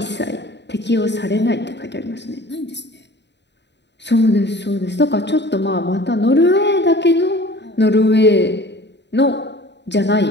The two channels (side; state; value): right; late; 0.51 ms